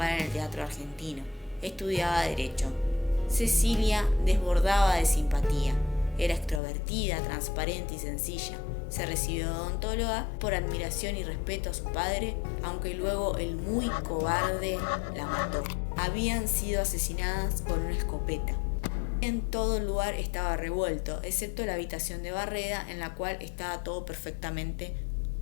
en el teatro argentino. Estudiaba Derecho. Cecilia desbordaba de simpatía. Era extrovertida, transparente y sencilla. Se recibió de odontóloga por admiración y respeto a su padre, aunque luego el muy cobarde la mató. Habían sido asesinadas con una escopeta. En todo el lugar estaba revuelto, excepto la habitación de Barreda, en la cual estaba todo perfectamente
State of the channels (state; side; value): drops out; right; at 6.6 s